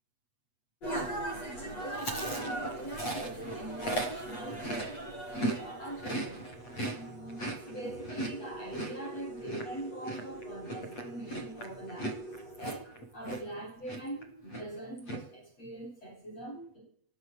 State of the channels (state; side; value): late; right; 8.2 ms